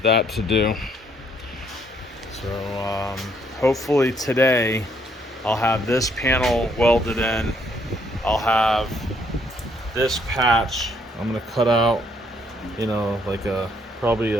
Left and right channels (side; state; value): both; normal; correlation 0.69